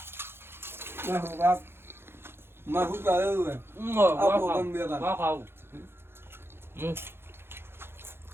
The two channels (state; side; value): late; left; 0.11 ms